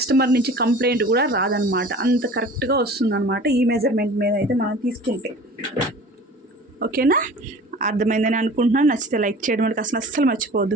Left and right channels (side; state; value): both; normal; correlation 0.42